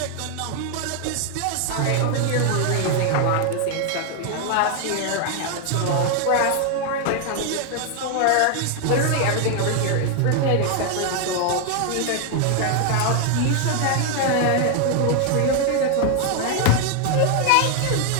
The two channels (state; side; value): different; both; correlation 0.00